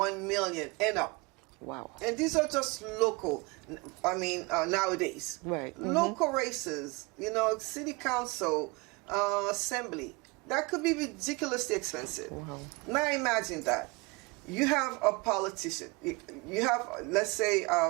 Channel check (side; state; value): left; quieter; 27.1 dB